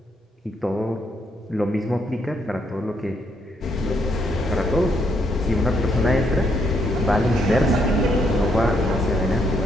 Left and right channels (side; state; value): both; normal; correlation 0.74